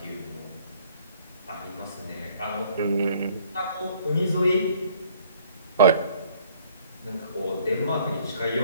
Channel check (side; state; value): both; inverted; correlation -0.58